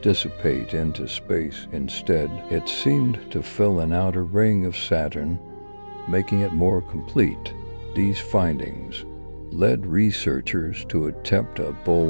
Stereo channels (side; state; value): both; inverted; correlation -1.00